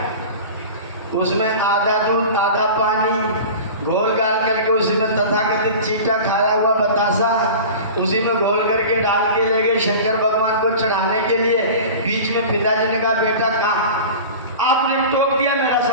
उसमें आधा दूध आधा पानी घोल गाल करके उसी में तथाकथित चीटा खाया हुआ बतासा उसी में घोल करके डाल के ले गए शंकर भगवान को चढ़ाने के लिए। बीच में पिताजी ने कहा, बेटा कहाँ आपने टोक दिया, मेरा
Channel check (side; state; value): both; inverted; correlation -0.35